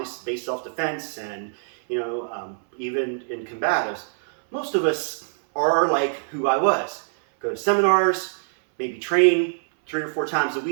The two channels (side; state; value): left; silent; 63 dB below the other